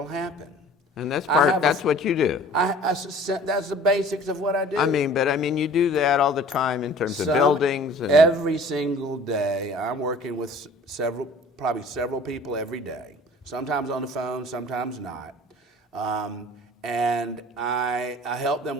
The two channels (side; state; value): both; normal; correlation 0.48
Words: happen." And that's what you do. That's the basics of what I do. I mean, you do that all the time in terms of buildings. And every single day, I'm working with probably several people every day. Sometimes on the phone, sometimes not. And I help them